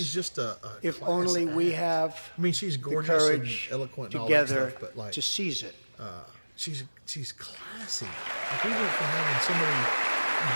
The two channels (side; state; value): both; inverted; correlation -1.00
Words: just a If class only we act. have I mean, she's the gorgeous courage and eloquent and all together that stuff, but like to seize it. she's classy. Like we went from having somebody